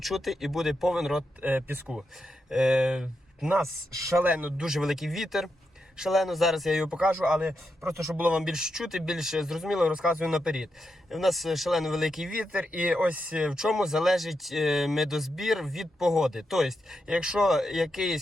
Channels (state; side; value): normal; both; correlation 0.85